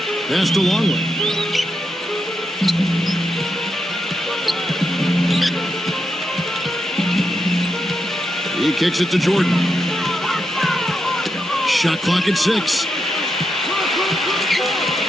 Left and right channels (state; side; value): normal; both; correlation 0.84